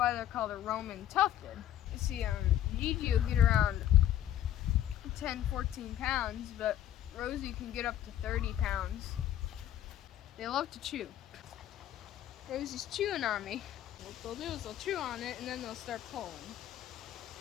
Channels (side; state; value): right; quieter; 11.7 dB